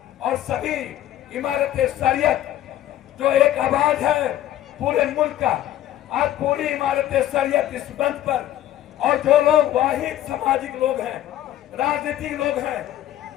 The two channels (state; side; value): quieter; right; 12.8 dB